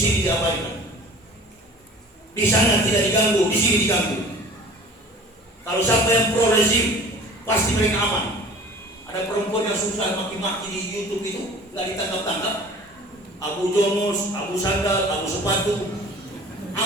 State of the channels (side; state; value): both; normal; correlation 0.45